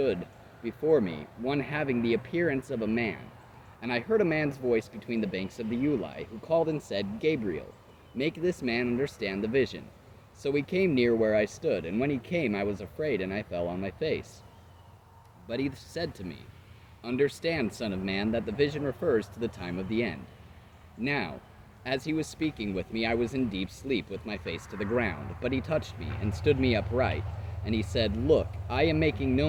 before me one having the appearance of a man. And I heard a man's voice between the banks of the Ulai, who called and said, "Gabriel, make this man understand the vision." So he came near where I stood, and when he came I was afraid, and I fell on my face. But he said to me, "Understand, son of man, that the vision refers to the time of the end." Now, as he was speaking with me, I was in deep sleep with my face to the ground, but he touched me and stood me upright, and he said, "Look, I am making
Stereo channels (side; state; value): both; identical; correlation 1.00